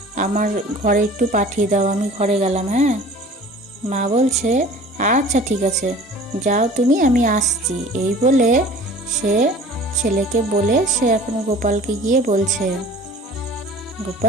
আমার ঘরে একটু পাঠিয়ে দাও, আমি ঘরে গেলাম। হ্যাঁ, মা বলছে আচ্ছা ঠিক আছে, যাও তুমি, আমি আসছি। এই বলে সে ছেলেকে বলে সে এখন গোপালকে গিয়ে বলছে,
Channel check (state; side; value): normal; both; correlation 0.45